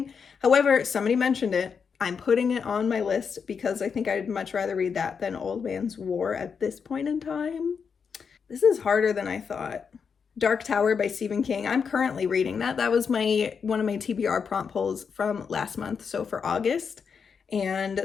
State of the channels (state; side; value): quieter; right; 6.2 dB